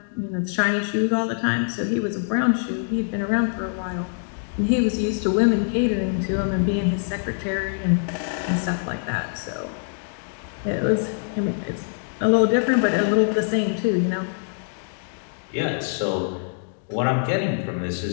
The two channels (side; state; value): right; silent; digital silence